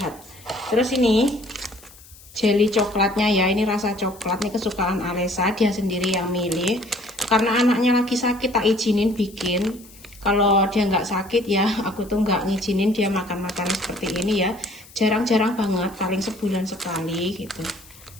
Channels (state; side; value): noise; left; hiss, 22 dB below the sound